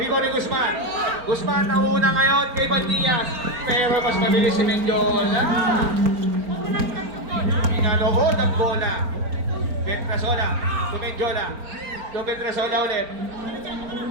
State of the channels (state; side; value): late; left; 4.4 ms